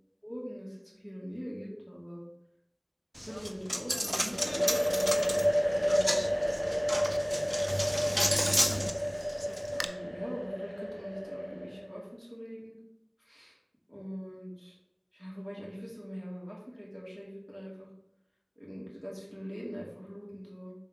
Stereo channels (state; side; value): identical; both; correlation 1.00